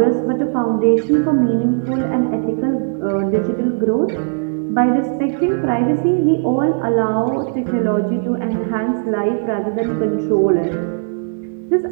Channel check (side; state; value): left; silent; digital silence